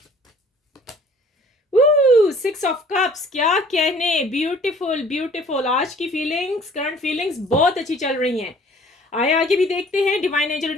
6 ऑफ कप्स, क्या कहने, ब्यूटीफुल ब्यूटीफुल। आज की फीलिंग्स, करंट फीलिंग्स बहुत अच्छी चल रही हैं। आगे भी देखते हैं। डिवाइन एंजल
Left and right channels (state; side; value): normal; both; correlation 0.53